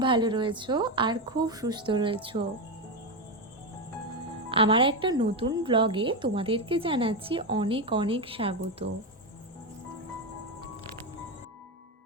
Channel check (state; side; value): normal; both; correlation 0.10